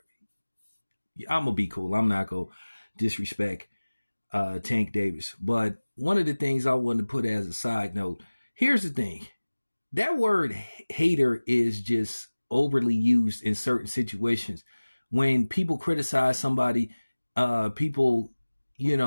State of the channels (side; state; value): both; inverted; correlation -1.00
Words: I'm gonna be cool. I'm not gonna disrespect Tank Davis. But one of the things I wanted to put as a side note, here's the thing. That word hater is just overly used in certain situations. When people criticize somebody, people,